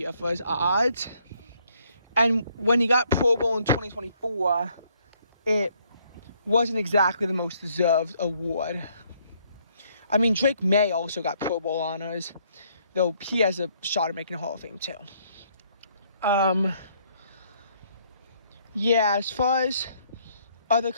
for his odds. And when he got Pro Bowl in 2024, it wasn't exactly the most deserved award. I mean, Drake May also got Pro Bowl honors, though he has a shot at making the Hall of Fame too. Yeah, as far as other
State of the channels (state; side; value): inverted; both; correlation -0.67